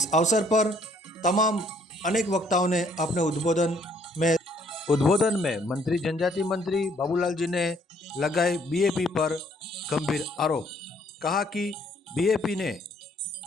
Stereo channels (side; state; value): both; normal; correlation 0.64